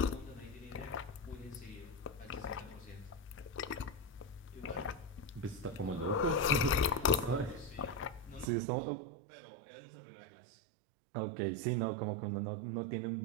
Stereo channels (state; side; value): drops out; left; at 8.5 s